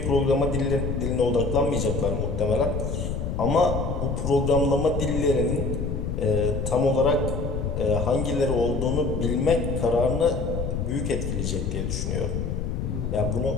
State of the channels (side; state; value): left; noise; rumble, 2 dB below the sound